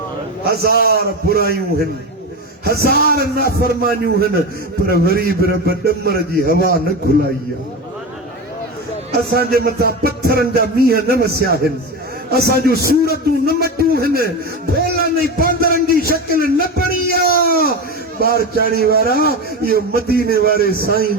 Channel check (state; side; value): normal; both; correlation 0.21